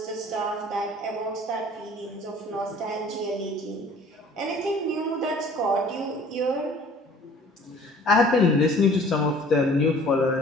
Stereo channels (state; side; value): normal; both; correlation 0.51